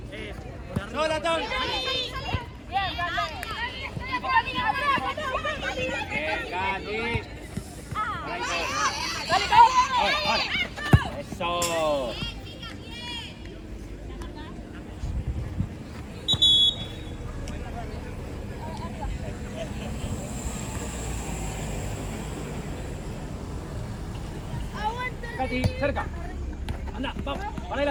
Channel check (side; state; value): both; identical; correlation 1.00